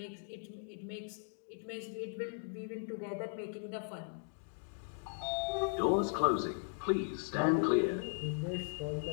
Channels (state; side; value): silent; right; digital silence